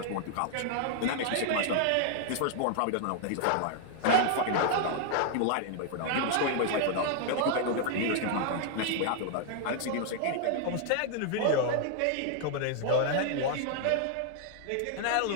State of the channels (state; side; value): different; both; correlation 0.00